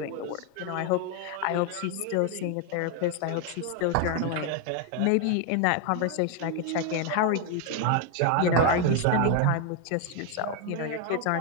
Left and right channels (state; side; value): different; both; correlation 0.01